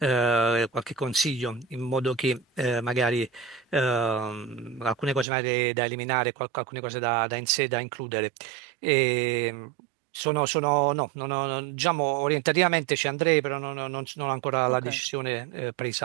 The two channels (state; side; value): drops out; left; at 5.2 s